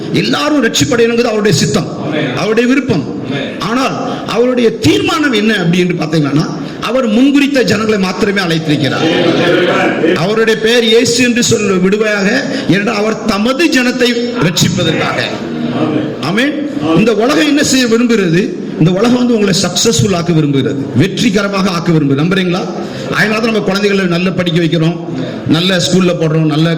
எல்லாரும் ரட்சிப்படையணுங்கிறது அவருடைய சித்தம், அவருடைய விருப்பம். ஆனால் அவருடைய தீர்மானம் என்ன அப்படி என்று பார்த்தீங்கன்னா, அவர் முன்குறித்த ஜனங்களை மாத்திரமே அழைத்திருக்கிறார். அவருடைய பெயர் இயேசு என்று சொல்ல விடுவையாக, ஏனென்றால் அவர் தமது ஜனத்தை ரட்சிப்பதற்காக. ஆமென். இந்த உலகம் என்ன செய்ய விரும்புகிறது? இந்த உலகம் வந்து உங்களை சக்சஸ்ஃபுல் ஆக்க விரும்புகிறது, வெற்றிகரமாக ஆக்க விரும்புகிறது. நம்புறீங்களா? அதனால தான் நம்ம குழந்தைகளை நல்ல படிக்க வைக்கிறோம், நல்ல ஸ்கூல்ல போடுறோம், நல்ல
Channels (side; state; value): both; identical; correlation 1.00